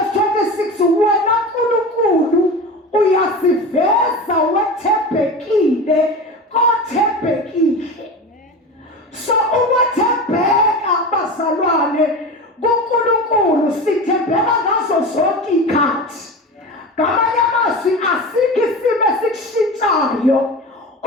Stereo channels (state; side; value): normal; both; correlation 0.29